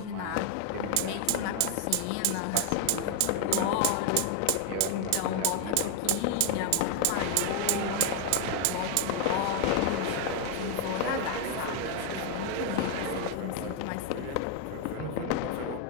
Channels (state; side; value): different; both; correlation 0.01